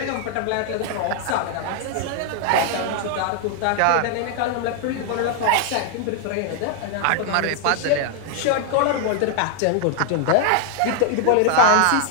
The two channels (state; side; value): different; both; correlation 0.00